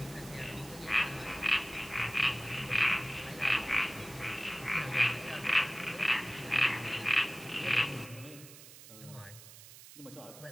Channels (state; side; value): noise; right; hiss, 17 dB below the sound